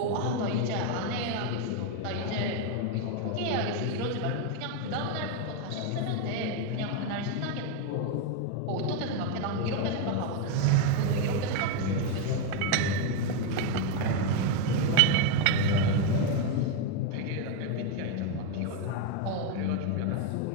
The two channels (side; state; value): both; different; correlation 0.01